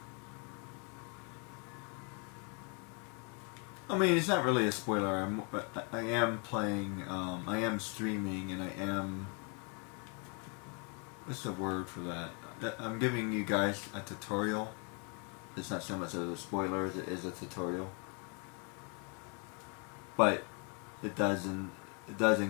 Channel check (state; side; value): quieter; right; 36.0 dB